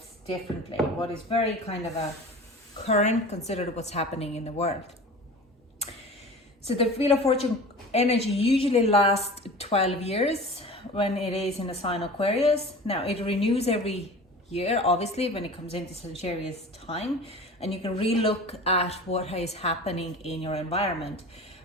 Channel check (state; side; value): normal; both; correlation 0.37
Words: differently. What is very kind of a current, considered what's happening in the world. So the Wheel of Fortune energy usually lasts 12 years when it is in a sign Aquarius. Now it renews every year, obviously, when it comes into Sagittarius time, and you can re-look at what is happening in your environment.